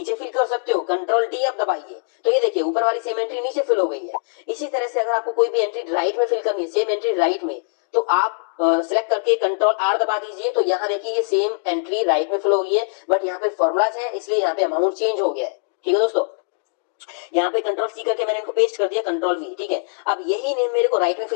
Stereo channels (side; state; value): right; silent; digital silence